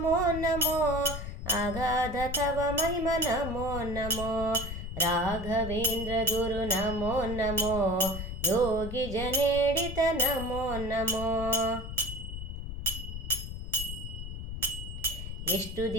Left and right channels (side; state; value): left; noise; rumble, 7 dB below the sound